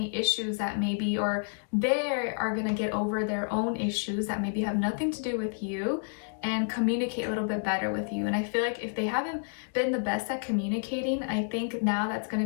issues that maybe, or they are going to get over their own issues that maybe have nothing to do with you, and communicate a little bit better with you. And I feel like if they haven't been the best at communicating, I think now that's going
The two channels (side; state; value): right; silent; digital silence